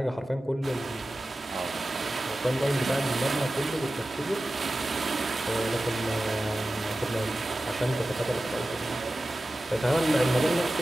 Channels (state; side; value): normal; both; correlation 0.95